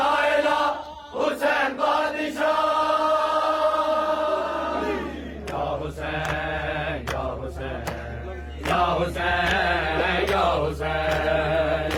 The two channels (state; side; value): identical; both; correlation 1.00